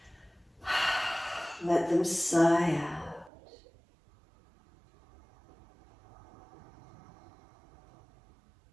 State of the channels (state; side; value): drops out; left; at 3.3 s